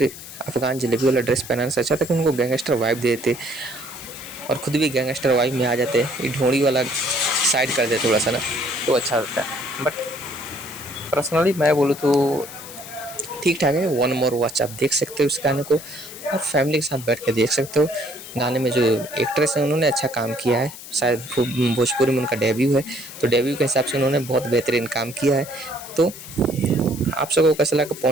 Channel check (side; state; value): left; noise; hiss, 14 dB below the sound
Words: अफगान जलेबी वाला ड्रेस पहनाने से अच्छा था कि उनको गैंगस्टर वाइब दे देते और खुद भी गैंगस्टर वाइब में आ जाते। ये ढोंड़ी वाला साइड कर दे थोड़ा सा ना, तो अच्छा होता है। बट पर्सनली मैं बोलूँ तो ठीक ठाक है। वन मोर वॉच आप देख सकते हो इस गाने को और फैमिली के साथ बैठ के देख सकते हो। गाने में जो एक्ट्रेस हैं उन्होंने अच्छा काम किया है, शायद भोजपुरी में उनका डेब्यू है, तो डेब्यू के हिसाब से उन्होंने बहुत बेहतरीन काम किया है। तो आप सबको कैसा लगा?